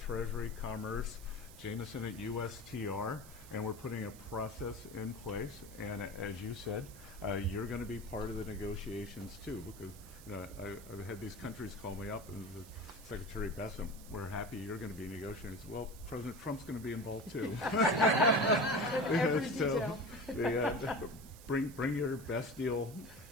Commerce, Jameson at USTR, and we're putting a process in place. And as you said, you're going to be part of the negotiations too, because I've had these countries call me up and Secretary Bessent, we're happy you're going to be negotiating. Well, President Trump's going to be involved too. Every So detail. bring your best deal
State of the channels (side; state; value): right; noise; hiss, 18 dB below the sound